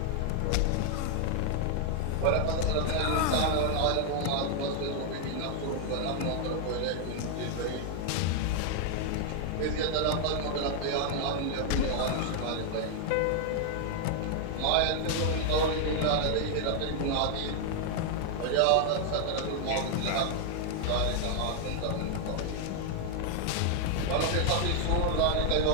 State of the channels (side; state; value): both; different; correlation 0.00